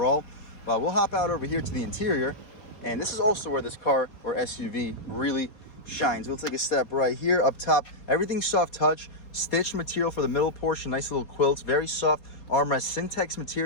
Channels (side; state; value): right; late; 4.2 ms